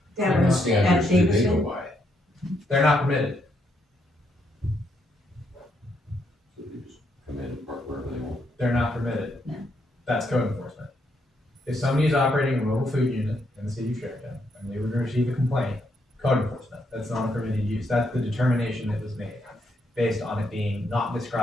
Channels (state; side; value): normal; both; correlation 0.76